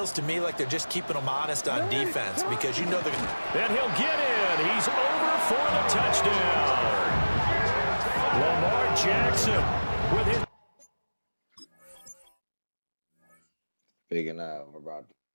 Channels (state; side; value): inverted; both; correlation -1.00